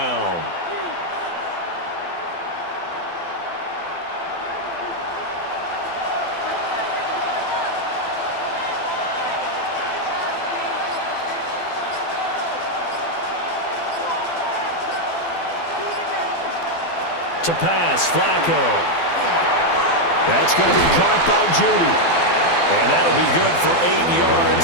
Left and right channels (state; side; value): late; right; 12 ms